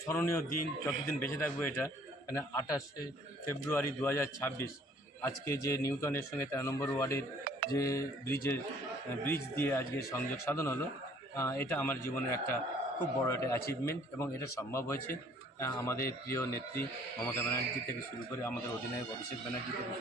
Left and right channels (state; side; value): normal; both; correlation 0.57